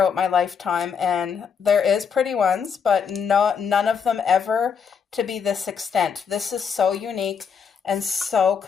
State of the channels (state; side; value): quieter; right; 6.6 dB